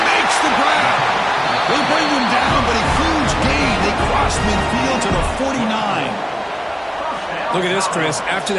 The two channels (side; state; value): both; identical; correlation 1.00